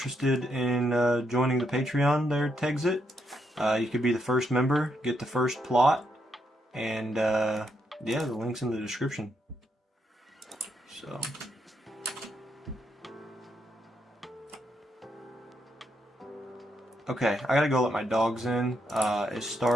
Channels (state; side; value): normal; both; correlation 0.79